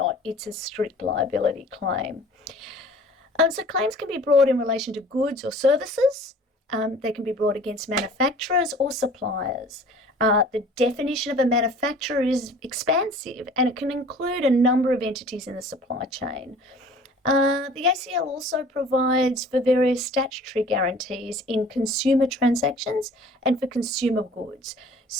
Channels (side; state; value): both; normal; correlation 0.48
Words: It's a strict liability claim. So claims can be brought in relation to goods or services. They can be brought against manufacturers or suppliers. The definition of a manufacturer is expansive and it can include a number of entities in the supply chain. The ACL also provides for various statutory guarantees in consumer transactions and for consumer goods.